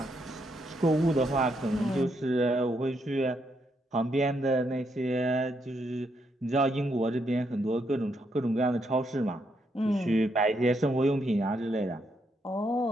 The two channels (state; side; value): normal; both; correlation 0.77